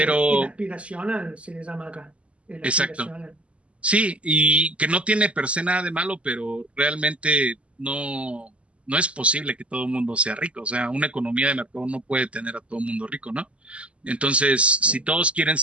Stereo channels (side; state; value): left; late; 0.060 ms